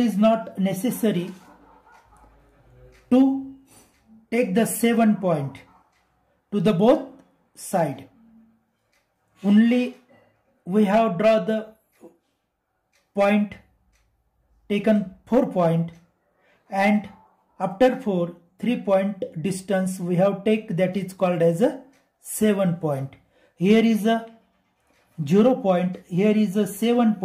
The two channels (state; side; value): identical; both; correlation 1.00